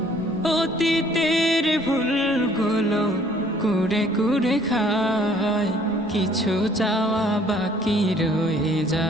অতীতের ভুলগুলো কুড়ে কুড়ে খায়, কিছু চাওয়া বাকি রয়ে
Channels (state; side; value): normal; both; correlation 0.59